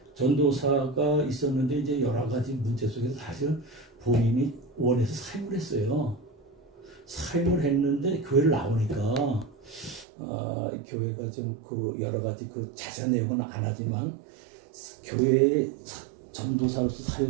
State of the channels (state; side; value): drops out; left; at 10.1 s